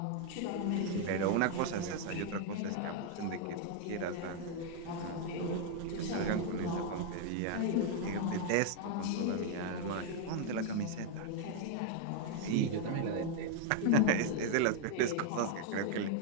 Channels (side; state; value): both; different; correlation 0.00